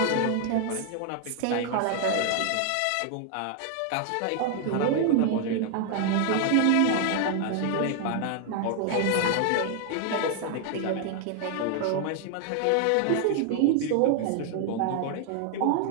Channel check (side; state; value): both; different; correlation 0.00